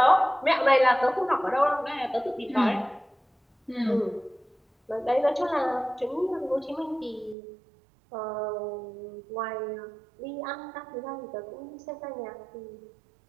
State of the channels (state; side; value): drops out; left; at 7.4 s